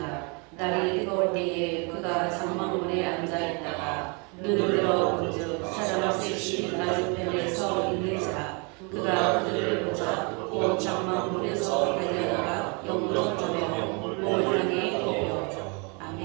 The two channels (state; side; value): quieter; left; 33.1 dB